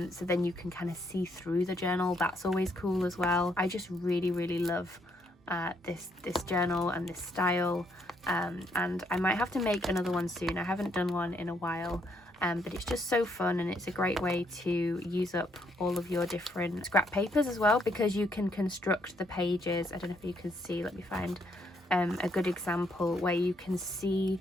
then you can kind of see through the journal. That's always cool as well. I just really love this journal and this style, and I might have to make another one soon. I haven't done one in a while, but it's just so fun, and it's a great way to use up all of your different scrap papers as well, because you can construct the pages. I don't know if you can see, let me find a good example where you can see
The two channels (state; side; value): normal; both; correlation 0.72